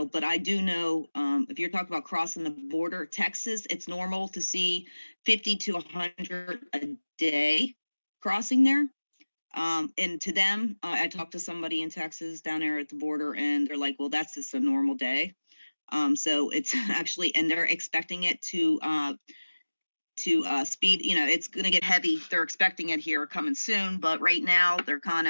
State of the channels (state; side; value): inverted; both; correlation -1.00